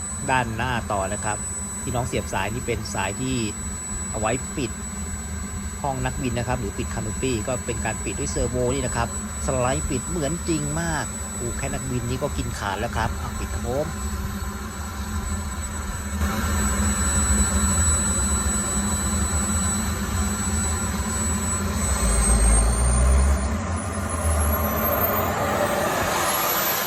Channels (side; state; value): both; identical; correlation 1.00